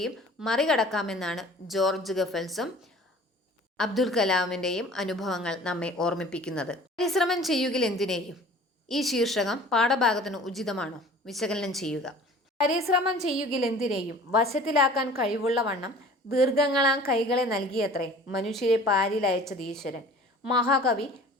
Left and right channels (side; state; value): both; normal; correlation 0.46